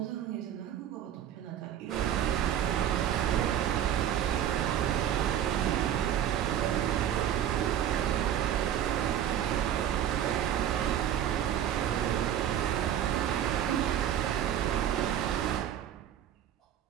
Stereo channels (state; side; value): quieter; left; 10.5 dB